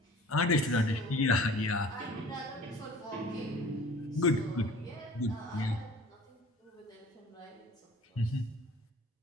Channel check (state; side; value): normal; both; correlation 0.46